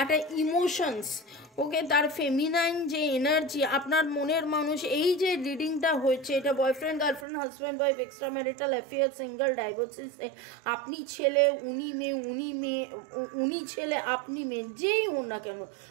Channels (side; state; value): left; drops out; at 7.2 s